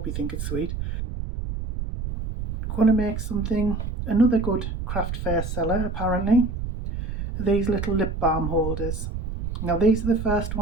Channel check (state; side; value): noise; right; rumble, 5 dB below the sound